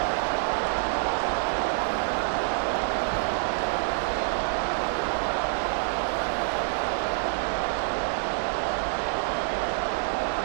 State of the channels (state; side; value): silent; left; 58 dB below the other